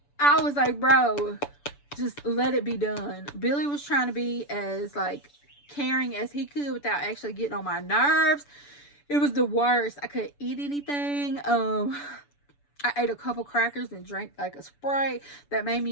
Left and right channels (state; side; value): late; right; 6.9 ms